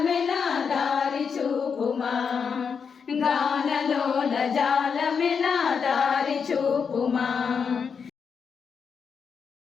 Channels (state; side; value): quieter; right; 6.2 dB